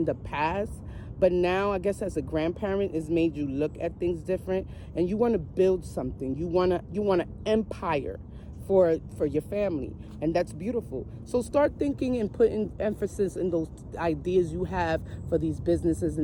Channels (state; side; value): identical; both; correlation 1.00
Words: the past, but now I guess as a grandparent, it's made you look at things different, and you want to build something. You want an empire for your family, and that's beautiful. So start thinking and putting emphasis in those ideas you have for these businesses